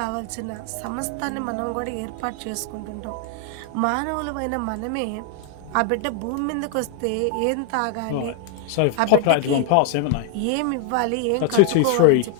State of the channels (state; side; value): different; both; correlation 0.00